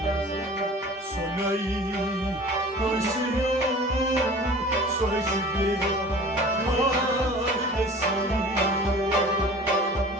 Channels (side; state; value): both; normal; correlation 0.43